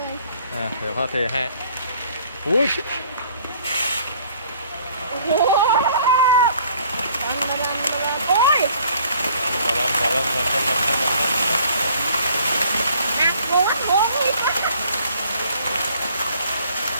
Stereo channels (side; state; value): both; inverted; correlation -0.57